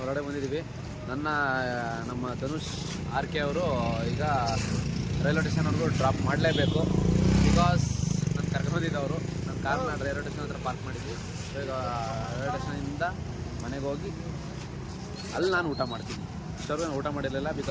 ಬಂದಿದ್ದೀವಿ. ನಮ್ಮ ಧನುಷ್, ಆರ್ಕೆ ಅವರು ಈಗ ರೈಲ್ವೆ ಸ್ಟೇಷನ್ವರೆಗೂ ಡ್ರಾಪ್ ಮಾಡಲೇಬೇಕು. ಬಿಕಾಸ್ ನಾನು ಕರ್ಕೊಂಬಂದಿದ್ದವರು ನನ್ನ ಕಾರ್ನ ರೈಲ್ವೆ ಸ್ಟೇಷನ್ ಹತ್ರ ಪಾರ್ಕ್ ಮಾಡಿದ್ವಿ. ಸೊ ಈಗ ರೈಲ್ವೆ ಸ್ಟೇಷನಿಂದ ಮನೆಗೆ ಹೋಗಿ ಅಲ್ಲಿ ನಾನು ಊಟ ಮಾಡ್ತೀನಿ. ಇಷ್ಟವರೆಗೂ ನಾನು ಊಟ ಮಾಡಿರಲಿಲ್ಲ,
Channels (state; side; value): identical; both; correlation 1.00